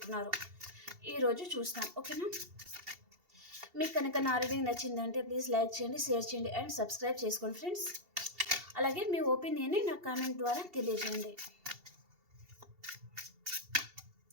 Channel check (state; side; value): late; left; 2.7 ms